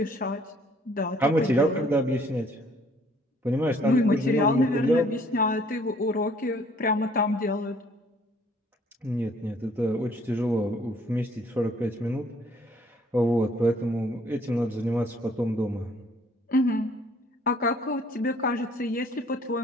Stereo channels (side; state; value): both; normal; correlation 0.60